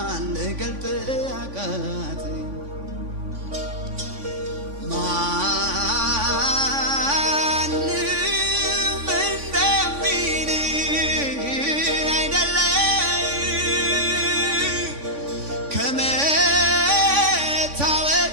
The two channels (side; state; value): left; late; 3.5 ms